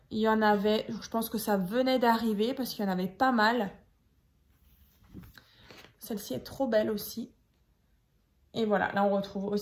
Il y en avait, je pense que ça venait d'arriver parce qu'il y en avait pas mal. Celle-ci est trop belle aussi. Et voilà, là on retrouve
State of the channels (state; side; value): identical; both; correlation 1.00